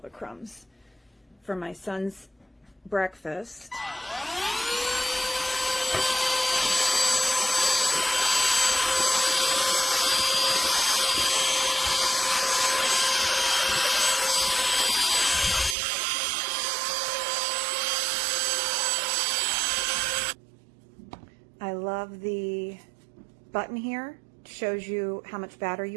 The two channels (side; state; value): left; drops out; at 15.8 s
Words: crumbs for my son's breakfast. I love the button here. It shows you how much battery